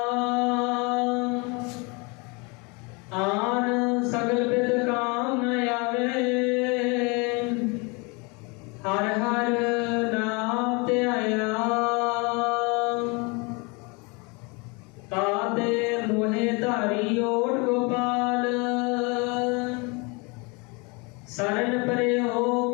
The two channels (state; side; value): quieter; right; 29.6 dB